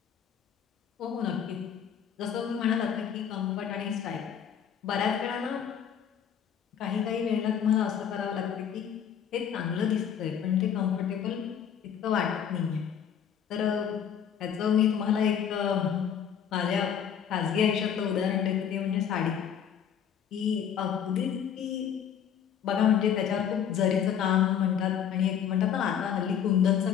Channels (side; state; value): right; quieter; 8.5 dB